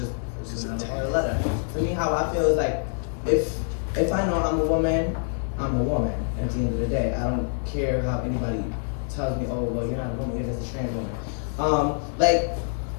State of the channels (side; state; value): right; silent; digital silence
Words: another part of letter. To me, how I feel is like, if I know I'm a woman, I'm a woman at the end of the day. I don't care how anybody tells me, oh, well, you're not a woman, you're just a trans woman. Like,